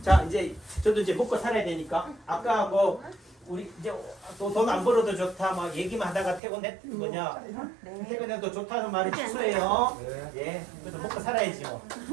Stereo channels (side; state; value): left; drops out; at 6.4 s